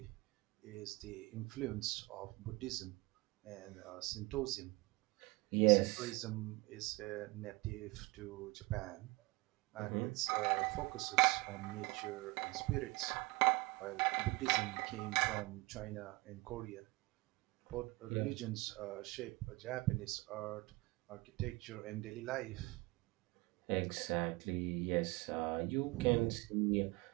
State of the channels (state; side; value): quieter; left; 23.6 dB